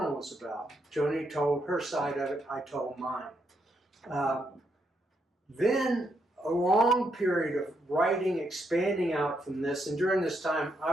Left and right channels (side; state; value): both; normal; correlation 0.78